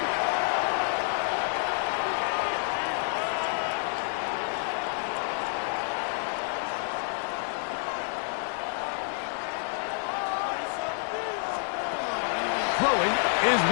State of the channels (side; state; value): right; silent; 59 dB below the other